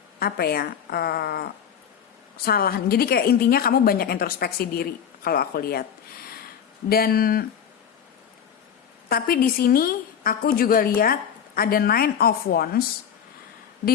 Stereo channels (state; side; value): quieter; right; 8.2 dB